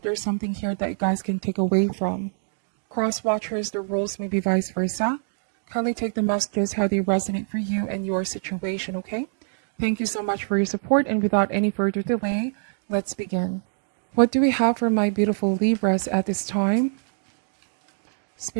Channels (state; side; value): silent; left; digital silence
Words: there's something here that you guys can take away from. Cross watchers, the rules may be vice versa. Kindly take the messages how they resonate for you and your situation, okay? Thank you so much for your support, and without any further delay, let's begin. What do we have for my beautiful Libras at this time?